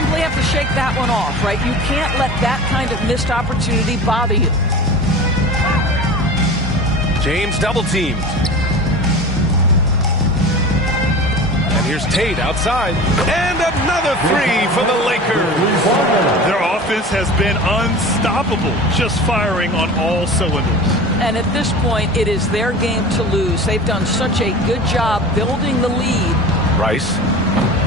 have to shake that one off, right? You can't let that kind of missed opportunity bother you. James double teamed. And here's Tate outside. And another three for the Lakers. Their offense has been unstoppable, just firing on all cylinders. And at this point, it is their game to lose. They've done such a good job building the lead. Rice.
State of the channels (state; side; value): normal; both; correlation 0.35